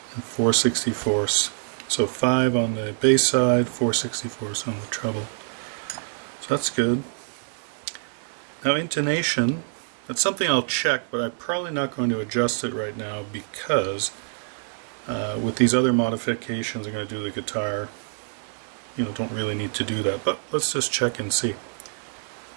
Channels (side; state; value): left; silent; digital silence